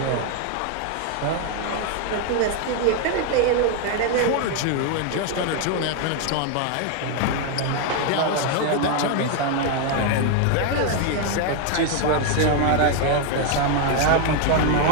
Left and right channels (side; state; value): both; different; correlation 0.01